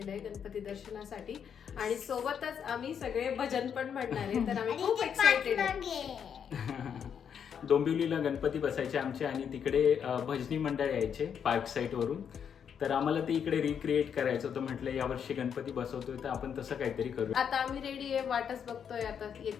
आहे गणपती दर्शनासाठी आणि सोबतच आम्ही सगळे भजन पण म्हणणार आहे. तर आम्ही खूप एक्साइटेड आहे. डोंबिवलीला गणपती बसायचे आमचे आणि तिकडे भजनी मंडळ यायचे पार्क साईट वरून. तर आम्हाला ते इकडे रिक्रिएट करायचं होतं. म्हटलं यावर्षी गणपती बसवतोय तर आपण तसं काहीतरी करू. आता आम्ही रेडी आहे, वाटच बघतोय. आता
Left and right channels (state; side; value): quieter; right; 7.8 dB